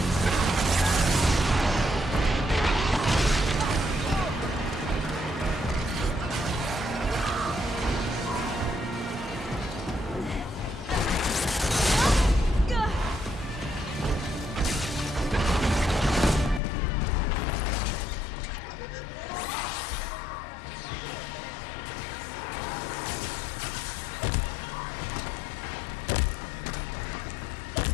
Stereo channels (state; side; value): drops out; right; at 16.6 s